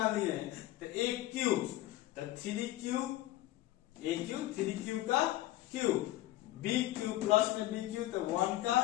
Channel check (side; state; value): right; quieter; 15.9 dB